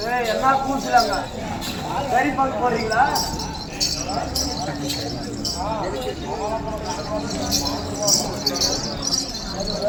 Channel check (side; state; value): both; identical; correlation 1.00